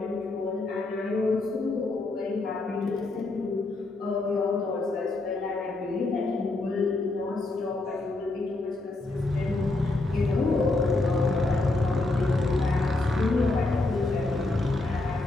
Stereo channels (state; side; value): quieter; right; 3.0 dB